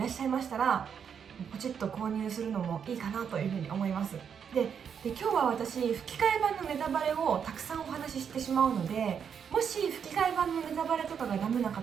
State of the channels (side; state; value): left; quieter; 7.4 dB